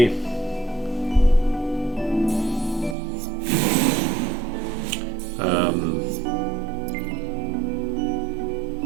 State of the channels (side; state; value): left; drops out; at 3.0 s